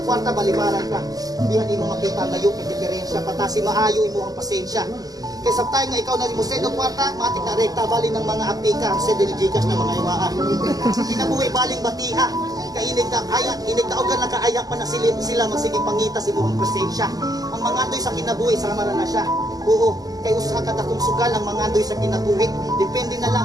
kwarta, balibaran ka. Hindi mo makita ang layo, yung diferensya, patasi maayo imo ang pasensya. Kaya sa tayo nga ikaw na mo send ang kwarta, matik na rekta, bali ng mga apika, send ng Gcash ng mga iwaan. Kinabuhi baling batiha, kainig na ayak, inig na ogan nakaayak pa na sila magsiging pangita si mo ang presensya. Ang mga doy sa kinabuhi, sama na siya. Oo, kay usa ka takong sugal ang mga andoy sa kinabuhi. Depende na lang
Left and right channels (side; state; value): left; late; 0.18 ms